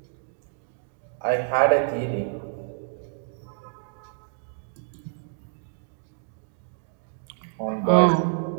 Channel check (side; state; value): left; silent; digital silence